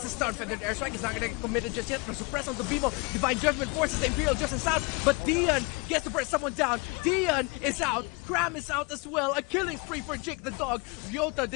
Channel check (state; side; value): quieter; right; 29.4 dB